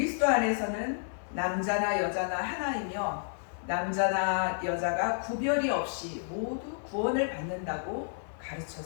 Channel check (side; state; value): right; silent; 57 dB below the other